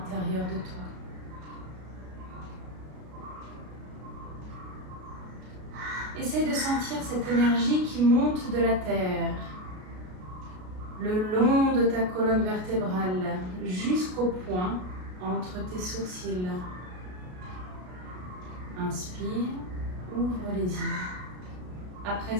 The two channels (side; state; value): left; late; 33 ms